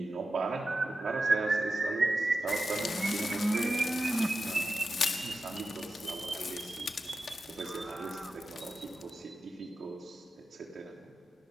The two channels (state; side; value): normal; both; correlation 0.91